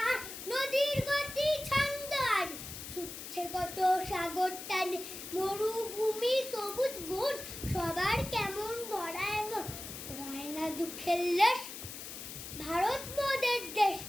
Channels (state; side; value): noise; left; hiss, 10 dB below the sound